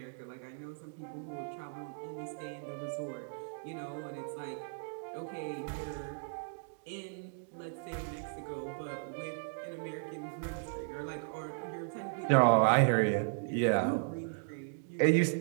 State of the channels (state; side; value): silent; left; digital silence